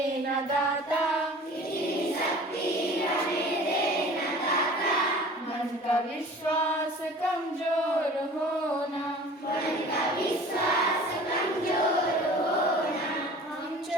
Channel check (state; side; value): normal; both; correlation 0.44